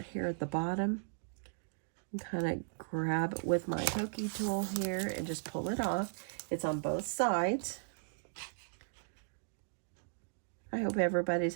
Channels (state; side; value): silent; left; digital silence